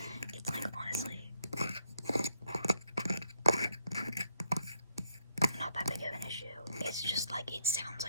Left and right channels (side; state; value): both; inverted; correlation -0.74